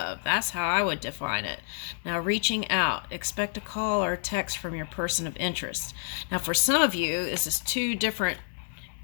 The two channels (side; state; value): right; silent; digital silence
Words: That's how I would define it. Now, reaching out, expect a call or a text from your person of interest. Now, for some of you, this is two different